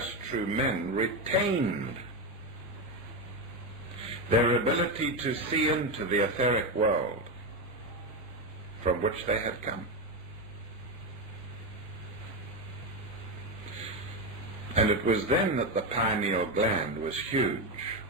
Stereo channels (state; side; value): normal; both; correlation 0.12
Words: true men retained their ability to see into the etheric world from which they had come. And it was then that the pineal gland was huge